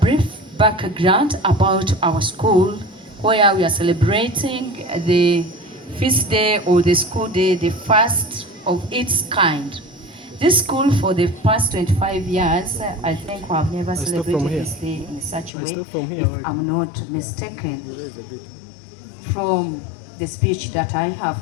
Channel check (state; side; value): drops out; right; at 15.5 s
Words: background about our school, where we are celebrating the feast day or the school day, the first of its kind. This school, for the past 25 years, I think we have never celebrated this day in such a way, if I'm not mistaken, from the speech that I have